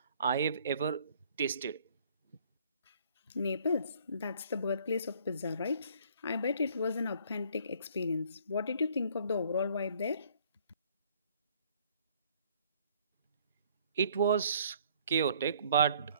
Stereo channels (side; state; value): both; inverted; correlation -0.60